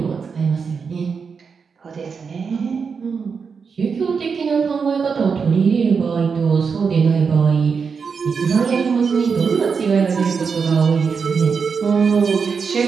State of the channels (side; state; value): left; quieter; 5.7 dB